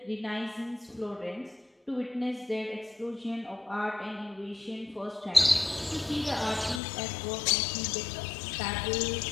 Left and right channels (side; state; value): right; drops out; at 6.8 s